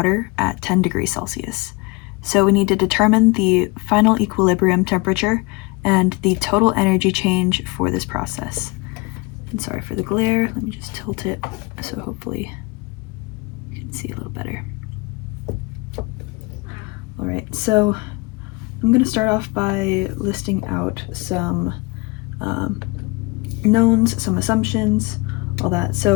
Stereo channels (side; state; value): right; quieter; 26.3 dB